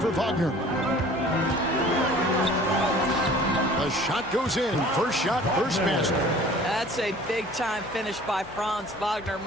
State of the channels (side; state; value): left; noise; hum, 23 dB below the sound